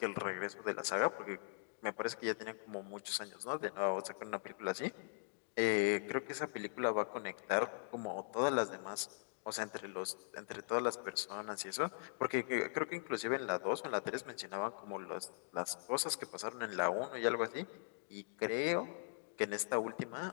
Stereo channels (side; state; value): right; silent; digital silence